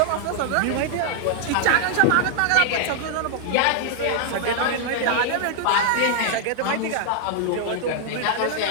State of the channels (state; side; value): different; both; correlation -0.01